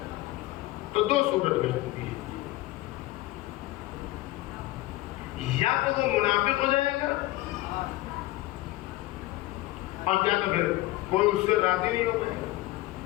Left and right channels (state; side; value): quieter; right; 18.0 dB